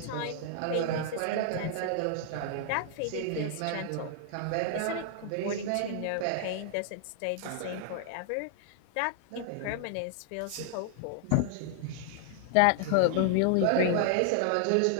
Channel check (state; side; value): different; both; correlation -0.01